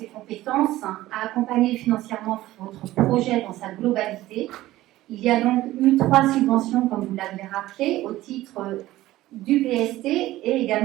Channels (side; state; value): left; quieter; 16.1 dB